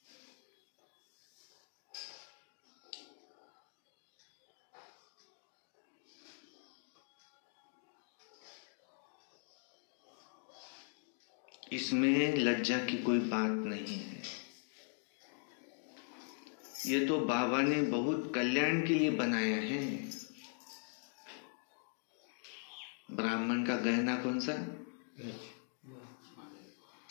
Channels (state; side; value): silent; right; 51 dB below the other